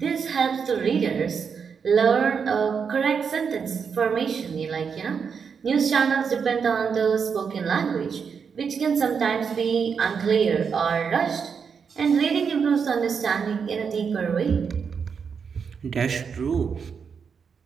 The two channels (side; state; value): left; quieter; 6.3 dB